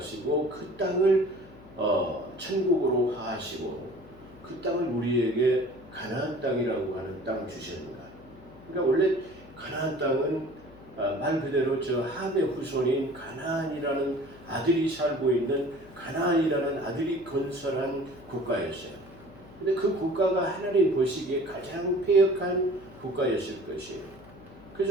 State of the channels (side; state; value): left; noise; hum, 21 dB below the sound